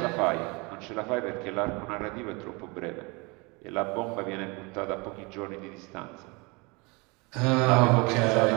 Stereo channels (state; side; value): quieter; left; 27.8 dB